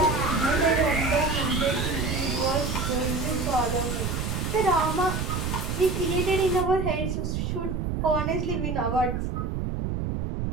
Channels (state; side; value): noise; right; rumble, 2 dB below the sound